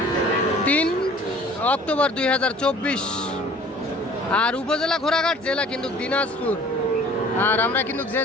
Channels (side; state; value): both; normal; correlation 0.49